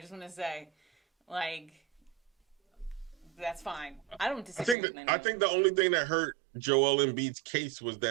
want to say, that's fine. I don't disagree with I think the only thing that hurt Joel Embiid's case was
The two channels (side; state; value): left; drops out; at 4.8 s